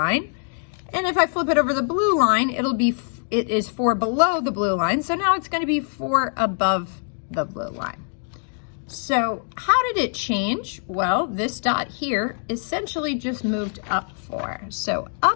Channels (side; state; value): right; silent; 63 dB below the other